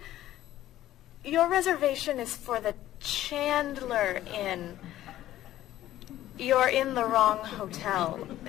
your reservation is for the Chandler Inn. You're in the wrong hotel.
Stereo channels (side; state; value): right; quieter; 13.7 dB